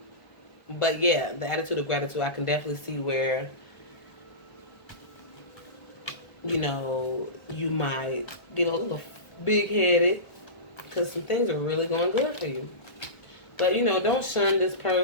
But yeah, the attitude of gratitude, I can definitely see where, you know, you might get a little big-headed because some things are really going good for you. But, you know, don't shun this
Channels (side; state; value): right; late; 1.4 ms